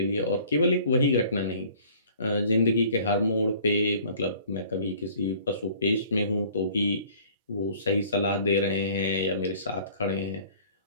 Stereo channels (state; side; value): inverted; both; correlation -0.51